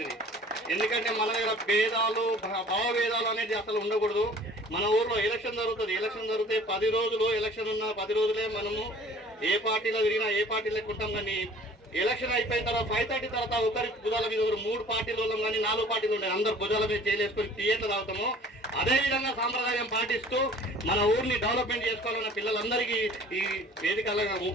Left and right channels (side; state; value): both; normal; correlation 0.49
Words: ఎందుకంటే మన దగ్గర భేదాలు భావభేదాలు అనేది అసలు ఉండకూడదు. మన ఊర్లో ఎలక్షన్ జరుగుతుంది, ఎలక్షన్ జరిగితే 10 రోజులు ఎలక్షన్ ఉన్న 10 రోజులే మనము ఏ పార్టీలో తిరిగినా ఏ పార్టీలోకి ఉంటాం, కానీ ఎలక్షన్ అయిపోయిన తర్వాత 5:30 తర్వాత ఒకరి భుజాల మీద 3 పార్టీల వాళ్ళం కానీ 4 పార్టీలు ఉండే అందరు భుజాల మీద చేయలేసుకొని థియేటర్ తాగుతాము. అదే విధంగా సాంప్రదాయం పాటిస్తూ మన ఊరిని డెవలప్మెంట్ చేసుకోవాలన్న పిల్లలందరికీ ఈ